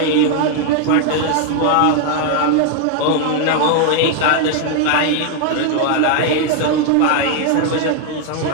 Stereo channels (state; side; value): different; both; correlation 0.00